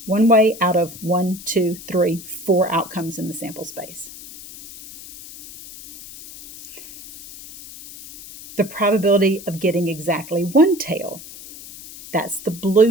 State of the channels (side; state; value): left; noise; hiss, 16 dB below the sound